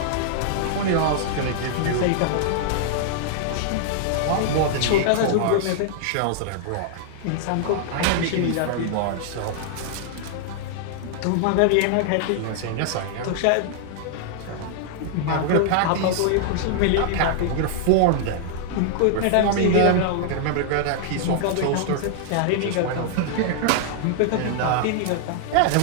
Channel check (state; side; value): different; both; correlation -0.01